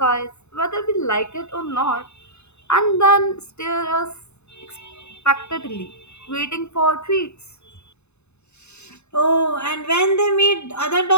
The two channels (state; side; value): late; right; 0.81 ms